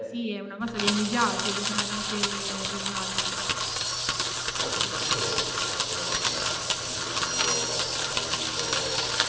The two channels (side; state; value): both; identical; correlation 1.00